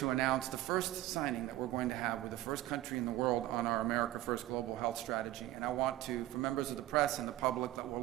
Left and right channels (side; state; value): left; quieter; 15.4 dB